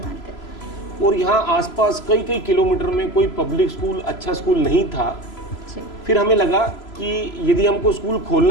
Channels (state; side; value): late; right; 3.0 ms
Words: और यहाँ आसपास कई कई किलोमीटर में कोई पब्लिक स्कूल, अच्छा स्कूल नहीं था। फिर हमें लगा कि यदि हमको स्कूल